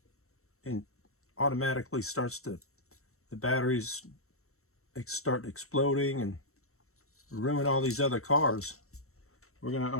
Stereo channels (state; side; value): late; right; 0.63 ms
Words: automatically starts to, the batteries start exploding and ruin all these other cars. We're